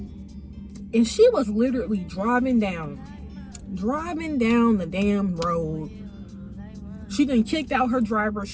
And she was literally driving down the damn road. She done kicked out her driver.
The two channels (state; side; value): identical; both; correlation 1.00